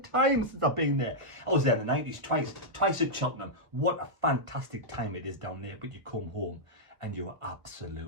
time since I've been there. I was there in the 90s twice at Cheltenham. What a fantastic time it is down there, but you come home and you are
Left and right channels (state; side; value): late; left; 1.3 ms